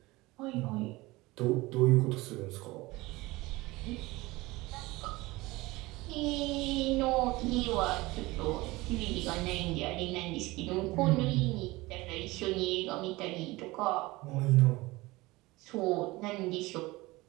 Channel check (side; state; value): left; quieter; 21.0 dB